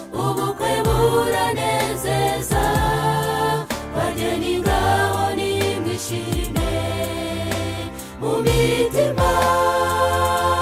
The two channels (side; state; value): both; identical; correlation 1.00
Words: ubukwe buranezeza, bageni ngaho nimwishime mu mitima,